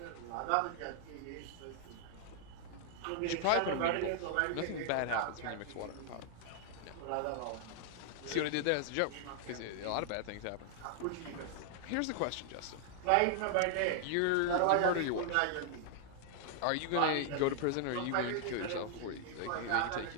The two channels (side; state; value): both; different; correlation 0.00